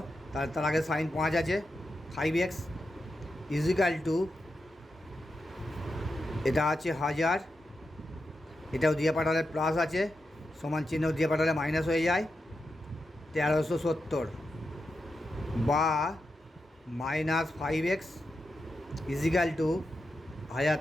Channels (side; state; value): both; normal; correlation 0.88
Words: তার আগে সাইন 5 আছে, 5x ইজিক্যাল টু, এটা আছে 1000, এটাও দিয়ে পাঠালে প্লাস আছে, সমান চিহ্ন দিয়ে পাঠালে মাইনাস হয়ে যায়, 1370, বা -5x ইজিক্যাল টু 1000